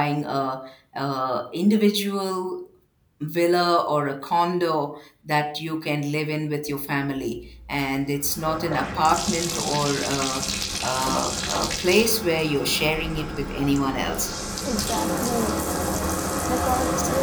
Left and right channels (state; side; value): identical; both; correlation 1.00